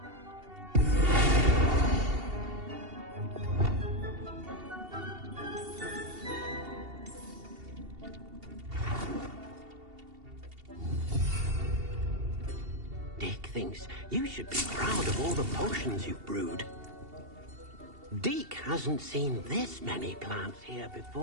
Deke thinks you should be proud of all the potions you've brewed. Deke hasn't seen this many plants here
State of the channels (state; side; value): late; left; 2.7 ms